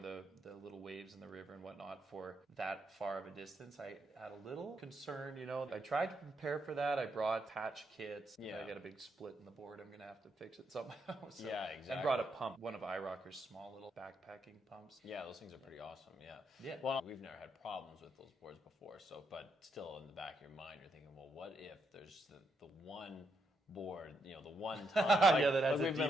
the little waves in the river and whatnot for that far of a distance, I had a little concern. I tried to prepare for that. I brought patch kits. I got a big split in the board. I'm gonna have to fix it somehow. So exactly. I brought a pump, one of iRocker's small little backpacking pumps. Yeah, those things are pretty awesome. Yeah. Well, we've never had problems with those boards before, but still in the back of your mind you're thinking, well, what if there's the one board, the one time. We've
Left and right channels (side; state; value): both; normal; correlation 0.79